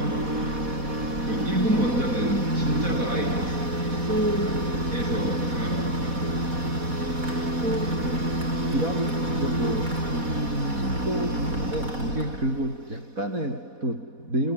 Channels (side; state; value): left; late; 4.1 ms